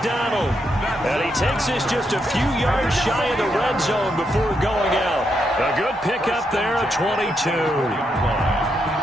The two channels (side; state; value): both; normal; correlation 0.80